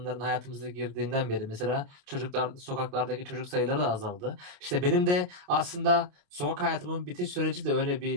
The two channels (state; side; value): late; left; 28 ms